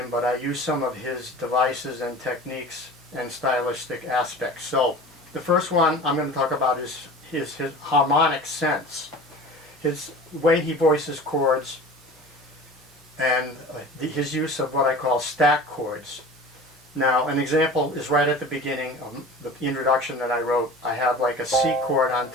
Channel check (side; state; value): both; normal; correlation 0.38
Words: but I use some of his devices and techniques and stylistic aspects. So the first one I'm going to talk about is his harmonic sense. His way he voices chords and his use of what I call stack chords. Now an example is right at the beginning of the introduction that I wrote. I have like a C chord on